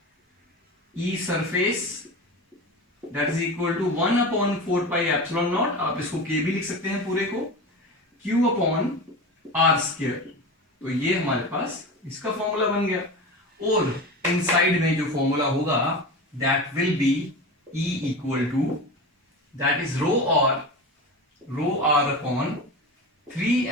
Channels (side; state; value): both; normal; correlation 0.28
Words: E surface that is equal to 1/4πε0, आप इसको k भी लिख सकते हैं पूरे को, Q/r²। तो ये हमारे पास इसका फॉर्मूला बन गया। और इनसाइड में जो फॉर्मूला होगा that will be E equal to that is rho